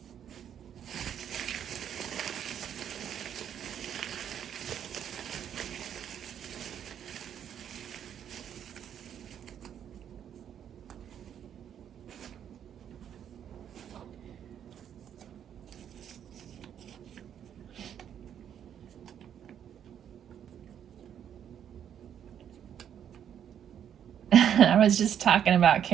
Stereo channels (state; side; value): quieter; left; 9.2 dB